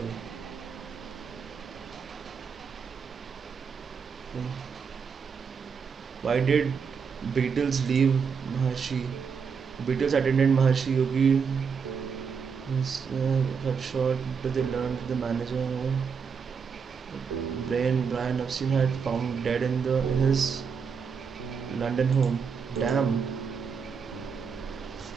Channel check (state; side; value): quieter; left; 6.1 dB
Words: Why did Beatles leave Maharshi? Beatles attended Maharshi Yogi. Cut short, but they learned the manager. Brian Epstein had found dead in his London home. Damn.